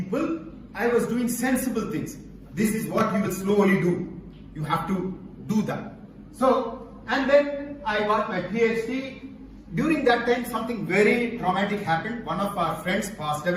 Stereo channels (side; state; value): both; identical; correlation 1.00